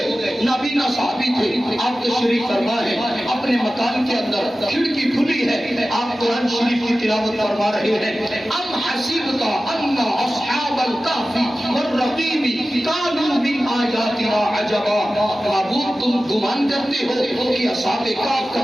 نابینا صحابی تھے، آپ تشریف فرما ہے اپنے مکان کے اندر، کھڑکی کھلی ہے، آپ قرآن شریف کی تلاوت فرما رہے ہیں. ام حسبت ان اصحاب الکہف والرقیم کانوا من آیاتنا عجبا. معبود تم گمان کرتے ہو کہ اصحاب کہف کا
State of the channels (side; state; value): both; normal; correlation 0.95